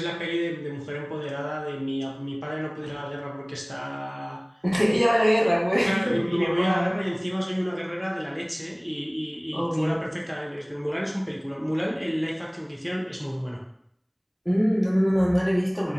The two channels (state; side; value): identical; both; correlation 1.00